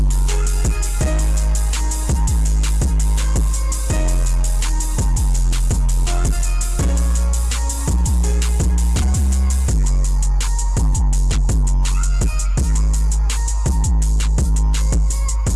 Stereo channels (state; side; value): identical; both; correlation 1.00